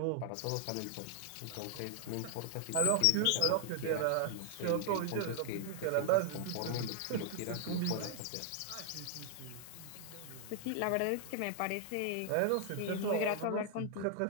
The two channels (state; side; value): different; both; correlation 0.00